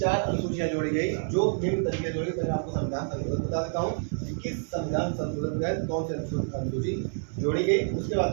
अनुसूचियां जोड़ी गई जो निम्न तरीके से जोड़ी गई। मैं आपको संविधान संशोधन बता देता हूँ कि किस संविधान संशोधन के तहत कौन सी अनुसूची जोड़ी गई। उसके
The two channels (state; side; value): silent; left; 59 dB below the other